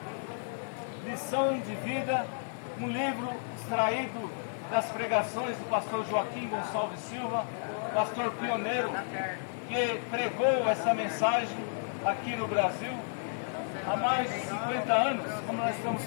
Lição de Vida, um livro extraído das pregações do pastor Joaquim Gonçalves Silva, pastor pioneiro que pregou essa mensagem aqui no Brasil há mais de 50 anos, como nós estamos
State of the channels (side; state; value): right; silent; digital silence